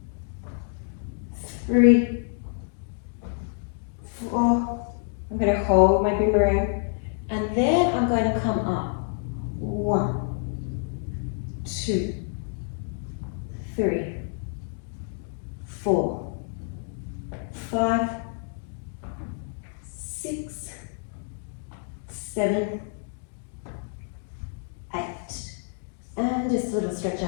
3, 4. I'm going to hold my boomerang, and then I'm going to come up. 1, 2, 3, 4, 5, 6, 7, 8. And just a little stretch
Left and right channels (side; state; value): right; silent; 60 dB below the other